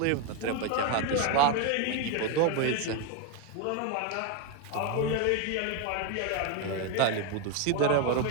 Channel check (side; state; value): both; different; correlation 0.02